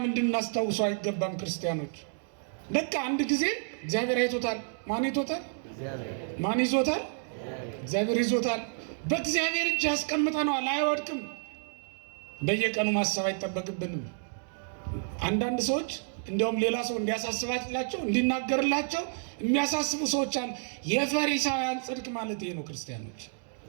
እንድናስታውሰው አይገባም? ክርስቲያኖች በቃ አንድ ጊዜ እግዚአብሔር አይቶታል። ማን ይቶታል? ማን ይዞታል? እግዚአብሔር ይዞታል። በእግዚአብሔር እጅ ያስቀምጠነዋል፣ አይወድቅም። በየቀኑ ማሰብ አይጠበቅብንም። አንዳንድ ሰዎች እንዲያውም ሌላ ሰው እንዲያሳስባላቸው እንዲናገርላቸው የሚያሳስቡ ሰዎች አሉ። የፈሪሳውያን ጽድቅ ማለት ይሄ ነው። ክርስቲያኖች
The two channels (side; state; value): left; silent; digital silence